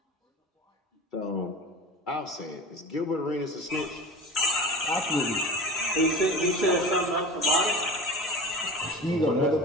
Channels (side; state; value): both; normal; correlation 0.34